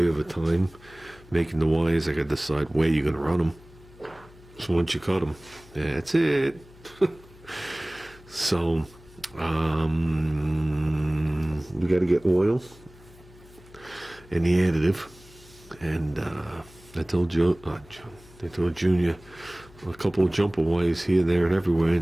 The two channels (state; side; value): noise; left; hum, 23 dB below the sound